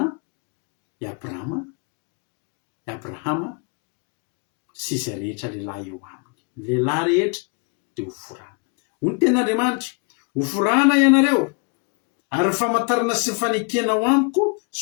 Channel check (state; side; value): quieter; right; 35.3 dB